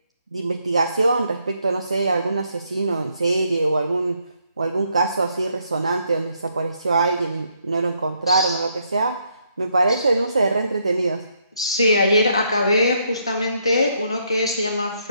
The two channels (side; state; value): both; inverted; correlation -0.74